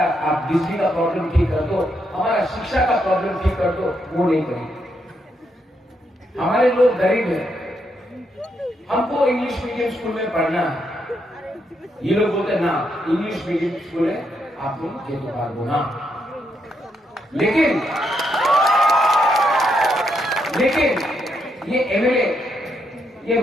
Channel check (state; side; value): normal; both; correlation 0.79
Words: आप बिजली का प्रॉब्लम ठीक कर दो, हमारा शिक्षा का प्रॉब्लम ठीक कर दो, वो नहीं करेंगे। हमारे लोग गरीब हैं, हमको इंग्लिश मीडियम स्कूल में पढ़ना है। ये लोग बोलते ना इंग्लिश मीडियम स्कूल है, आप लोग ये तो बात बोला। लेकिन ये एमएलए, ये